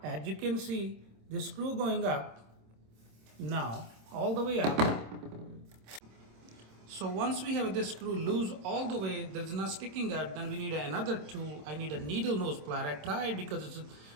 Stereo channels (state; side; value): late; left; 26 ms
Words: As you can see, the screw going up now all the way up. So once we have this screw loose all the way, there's not sticking out, then we need another tool. I need a needle nose plier. I tried because it's